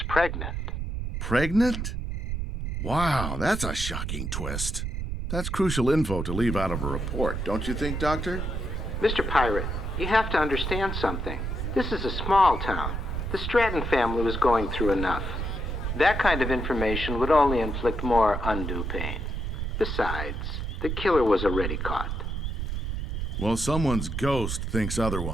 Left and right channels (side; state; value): right; noise; rumble, 3 dB below the sound